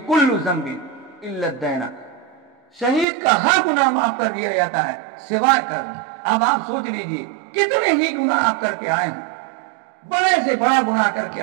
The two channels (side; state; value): left; drops out; at 3.1 s